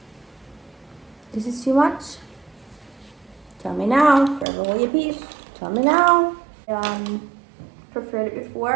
This is too much? Tell me now. Forever hold your peace. Tell me now. Preferred it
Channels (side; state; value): left; drops out; at 4.5 s